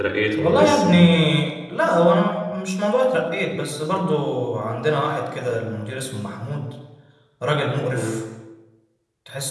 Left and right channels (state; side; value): identical; both; correlation 1.00